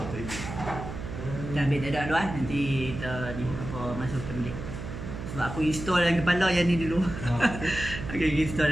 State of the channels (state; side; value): noise; right; hum, 8 dB below the sound